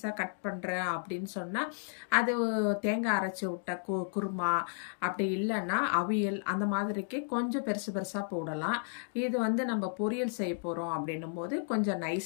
கட் பண்ணுறேன் அப்படின்னு சொன்னால் அது தேங்காய் அரைச்சி விட்ட குருமா, அப்படி இல்லைன்னா அவியல், அந்த மாதிரிக்கு கொஞ்சம் பெருசு பெருசாக போடலாம். இது நம்ம பொரியல் செய்ய போகிறோம் அப்படின்னும் போது கொஞ்சம்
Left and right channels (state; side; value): silent; right; digital silence